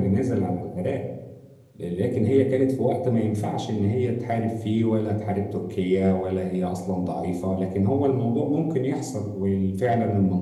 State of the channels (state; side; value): identical; both; correlation 1.00